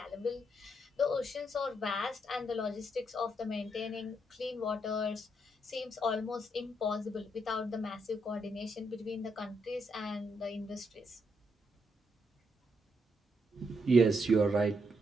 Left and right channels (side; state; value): both; normal; correlation 0.78